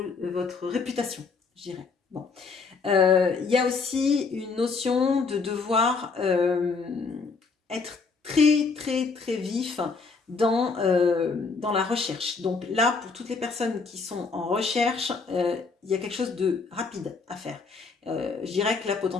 votre réputation, je dirais. Bon. Il y a aussi une notion de devoir être très, très, très vif dans la recherche. Donc là, pour toutes les personnes qui sont en recherche, il y a quelque chose de rapide à faire. Je dirais que là,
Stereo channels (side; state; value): right; quieter; 4.6 dB